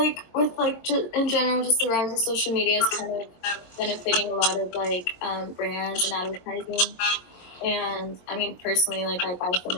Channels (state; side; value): late; right; 22 ms